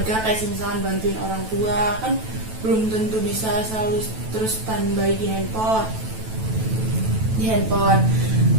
kayak misalkan bantuin orang tua, kan belum tentu bisa selalu terus standby di handphone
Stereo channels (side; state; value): left; late; 9.1 ms